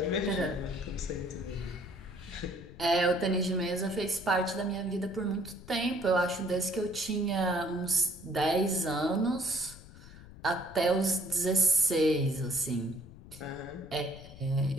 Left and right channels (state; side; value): noise; left; rumble, 17 dB below the sound